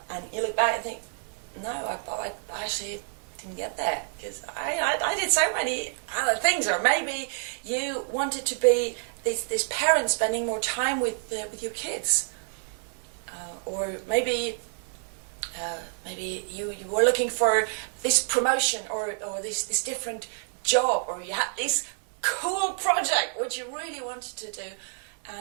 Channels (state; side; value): silent; left; 59 dB below the other